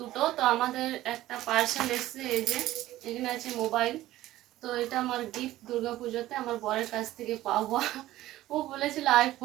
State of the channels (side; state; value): left; quieter; 15.2 dB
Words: তো আমাদের একটা পার্সেল এসছে, এই যে এখানে আছে মোবাইল। তো এটা আমার গিফট দুর্গাপুজোতে আমার বরের কাছ থেকে পাওয়া। ও বলেছিল